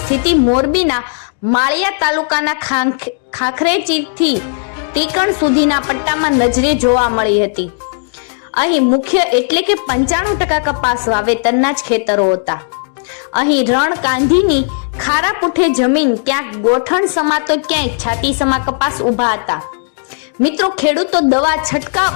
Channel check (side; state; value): right; silent; digital silence